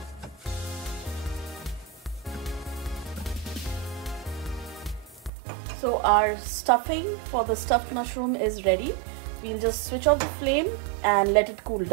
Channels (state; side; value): drops out; left; at 5.3 s